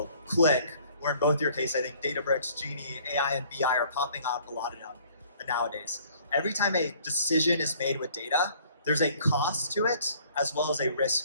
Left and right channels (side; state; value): both; inverted; correlation -0.57